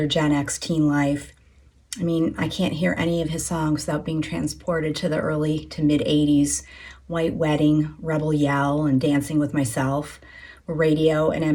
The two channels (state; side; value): identical; both; correlation 1.00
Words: Gen X teen life. I mean, I can't hear any of his songs without being transported to the early to mid 80s. White Wedding, Rebel Yell, and Dancing with Myself were radio